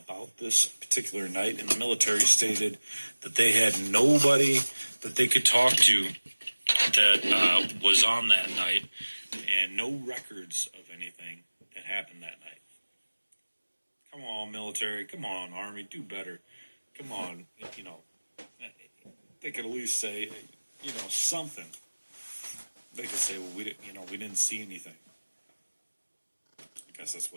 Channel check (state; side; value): inverted; both; correlation -1.00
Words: this particular night, and the military stated that they had nobody that they could talk to that was on that night, and no records of anything that happened that night. Come on, military. Come on, Army. Do better. Come on. They could at least say, something. They could say, well, we didn't see anything. I guess that's